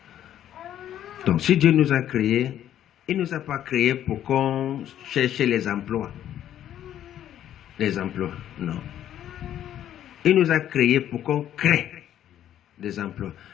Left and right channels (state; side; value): quieter; right; 11.1 dB